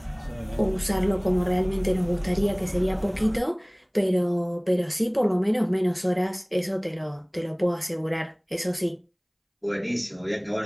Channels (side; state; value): both; identical; correlation 1.00